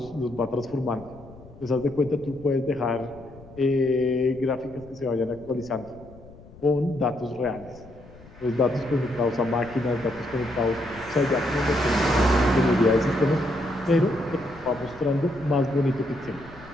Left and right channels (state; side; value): noise; left; rumble, 20 dB below the sound